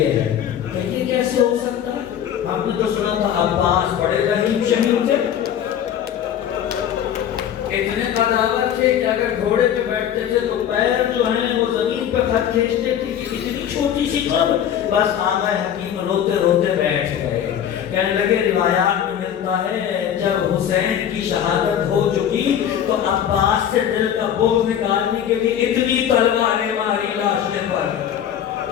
ہے، کہ یہ کیسے ہو سکتا ہے؟ ہم نے تو سنا تھا عباس بڑے رحیم شہید تھے، اتنے قداور تھے کہ اگر گھوڑے پہ بیٹھتے تھے تو پیر جو ہیں وہ زمین پہ خط کھینچتے تھے، اتنی چھوٹی سی قبر۔ بس آقا حکیم روتے روتے بیٹھ گئے، کہنے لگے روایات میں ملتا ہے جب حسین کی شہادت ہو چکی تو عباس سے دل کا بوجھ نکالنے کے لیے اتنی تلواریں ماری لاشیں پر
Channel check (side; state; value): right; quieter; 9.6 dB